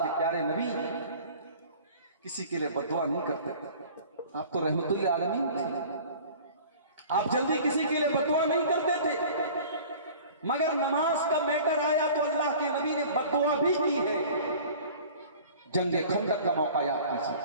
प्यारे नबी किसी के लिए बददुआ नहीं करते। आप तो रहमतुल आलमीन थे, आप जल्दी किसी के लिए बददुआ नहीं करते थे, मगर नमाज का मैटर आया तो अल्लाह के नबी ने बददुआ भी की है। जंगे खंदक का मौका याद कीजिए,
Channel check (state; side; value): inverted; both; correlation -0.45